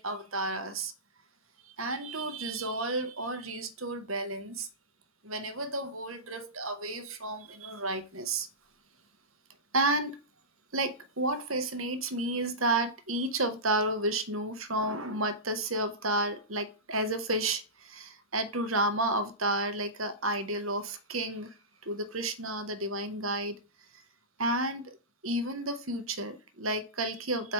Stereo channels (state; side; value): normal; both; correlation -0.19